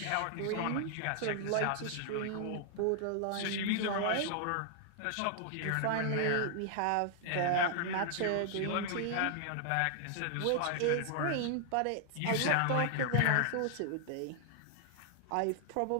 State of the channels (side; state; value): both; different; correlation 0.00